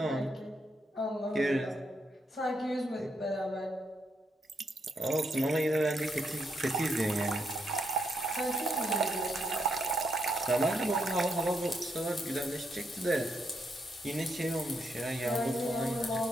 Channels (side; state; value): both; normal; correlation 0.78